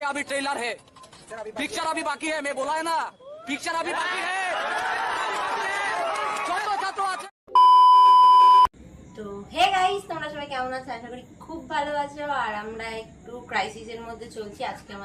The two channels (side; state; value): both; identical; correlation 1.00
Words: अभी ट्रेलर है, पिक्चर अभी बाकी है। मैं बोला है ना, पिक्चर अभी बाकी है। তো হে গাইস, তোমরা সবাই কেমন আছো? আশা করি খুব ভালো আছো। আর আমরা একটু ক্রাইসিসের মধ্যে চলছি। আজকে